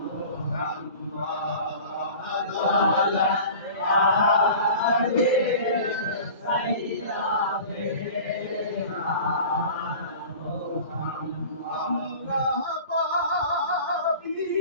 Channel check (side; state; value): both; inverted; correlation -0.40